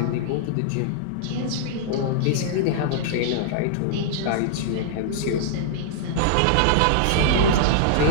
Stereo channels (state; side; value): different; both; correlation -0.01